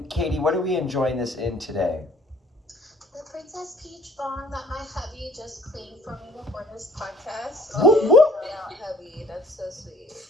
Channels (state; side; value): normal; both; correlation 0.56